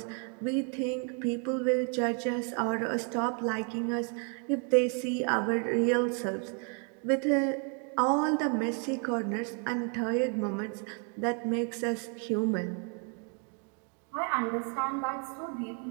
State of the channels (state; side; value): quieter; left; 39.5 dB